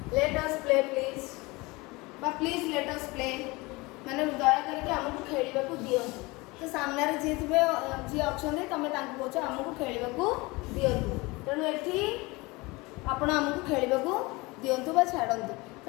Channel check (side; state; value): right; quieter; 23.8 dB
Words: बा प्लीज लेट अस प्ले माने दया करके हमको खेलिबा को दियंतु तो सामने रे जे थिबे जे अछने तमे तांको कहछ हमको खेलिबा को दियंतु तेणु एठी आपण हमको खेलिबा को दियंतु बा छाडंतु